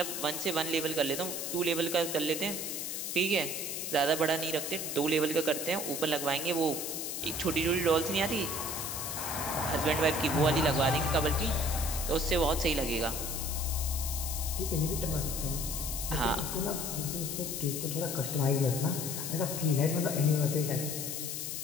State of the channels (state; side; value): noise; left; hiss, 4 dB below the sound